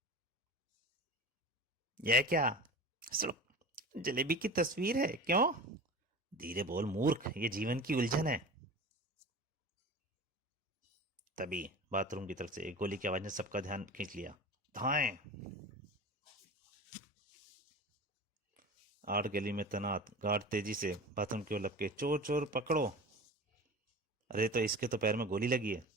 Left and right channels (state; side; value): normal; both; correlation 0.34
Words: यह क्या? सिर्फ जलेबी की तस्वीर है, क्यों? धीरे बोल मूर्ख, ये जीवन की उलझन है। तभी बाथरूम की तरफ से एक गोली की आवाज ने सबका ध्यान खींच लिया। धाएं! आर्ट गैलरी में तैनात गार्ड तेजी से बाथरूम की ओर लपके। चोर चोर पकड़ो! अरे तो इसके तो पैर में गोली लगी है।